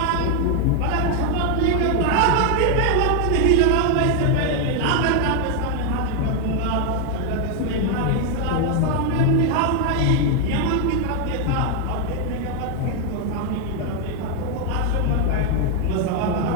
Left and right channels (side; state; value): both; different; correlation 0.01